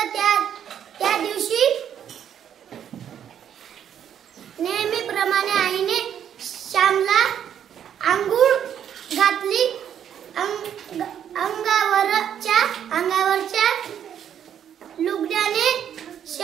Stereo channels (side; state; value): left; quieter; 9.3 dB